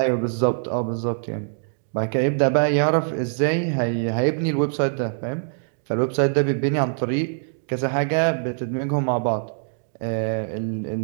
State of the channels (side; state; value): left; silent; digital silence